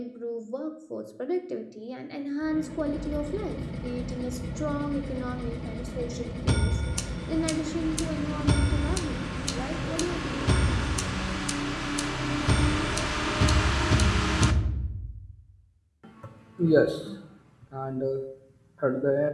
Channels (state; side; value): identical; both; correlation 1.00